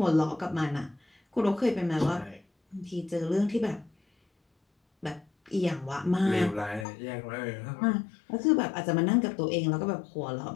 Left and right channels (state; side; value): drops out; right; at 6.9 s